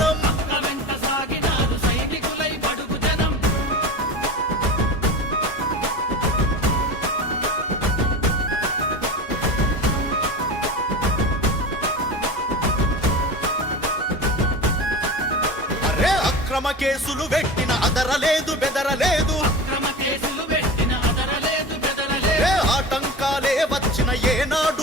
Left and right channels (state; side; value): normal; both; correlation 0.30